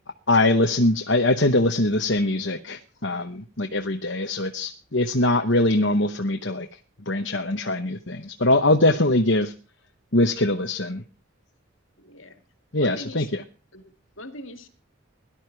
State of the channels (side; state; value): both; normal; correlation 0.06